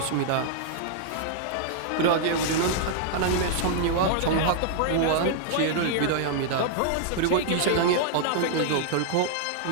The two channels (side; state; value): both; different; correlation -0.01